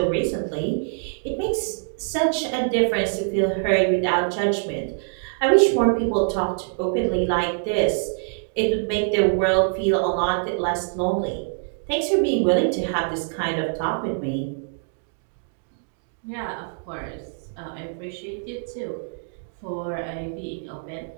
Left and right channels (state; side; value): silent; left; digital silence